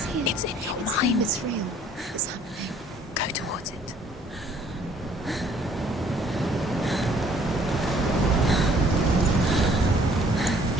here. It's in your mind. It's real. It's happening. Go towards it.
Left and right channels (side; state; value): both; normal; correlation 0.59